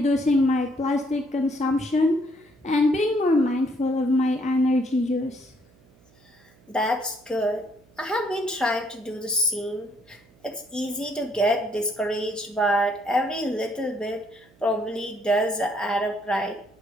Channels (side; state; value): right; noise; hum, 30 dB below the sound